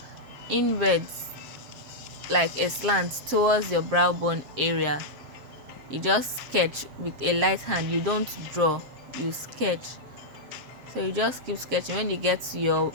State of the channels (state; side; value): late; left; 7.5 ms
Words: inwards, like a slant towards your brow bone area. You just sketch with a light hand. You don't draw, you sketch. So you just keep sketching. When you get to your